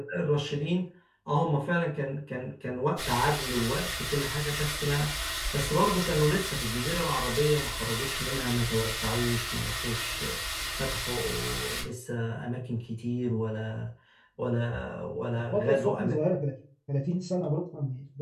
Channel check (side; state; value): both; identical; correlation 1.00